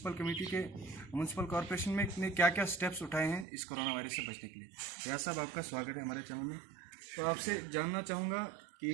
कॉरपोरेशन में ने क्या क्या स्टेप्स उठाए हैं इस कोरोना वायरस से बचने के लिए। रियाज साहब, आपका स्वागत है हमारे चैनल में। तो आपसे जानना चाहूँगा कि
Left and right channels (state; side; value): drops out; left; at 3.5 s